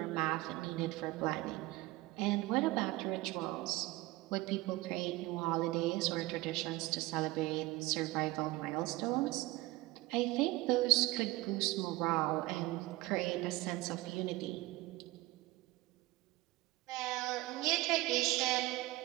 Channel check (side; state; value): left; quieter; 19.8 dB